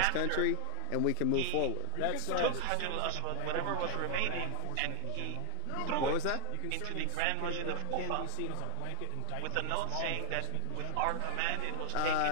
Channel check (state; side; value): different; both; correlation 0.01